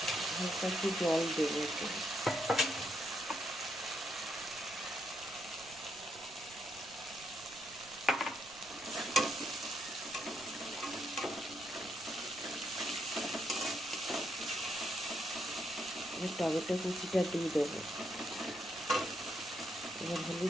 হালকা একটু জল দেবো। এবার টমেটো কুচিটা দিয়ে দেবো, এবার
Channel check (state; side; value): noise; right; rumble, 23 dB below the sound